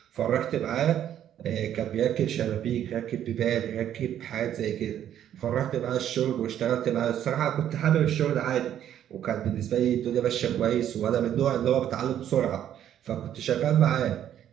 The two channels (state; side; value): quieter; left; 10.6 dB